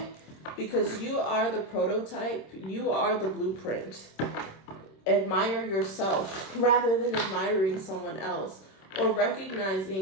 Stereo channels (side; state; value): right; late; 26 ms